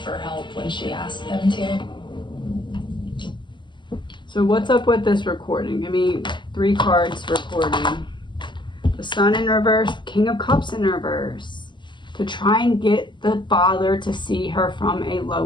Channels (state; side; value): late; right; 0.22 ms